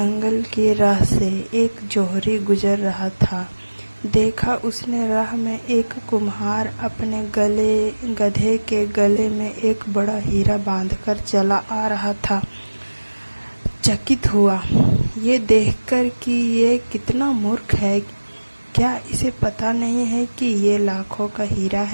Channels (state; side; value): inverted; both; correlation -1.00